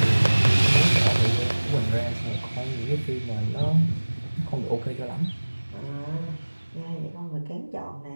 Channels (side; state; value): both; inverted; correlation -1.00